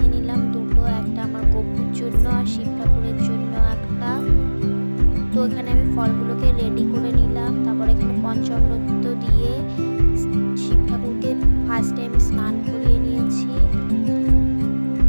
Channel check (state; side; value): inverted; both; correlation -1.00